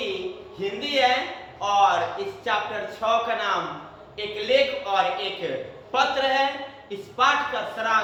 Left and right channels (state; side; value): identical; both; correlation 1.00